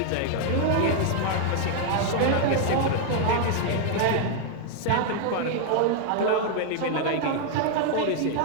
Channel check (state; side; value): different; both; correlation 0.00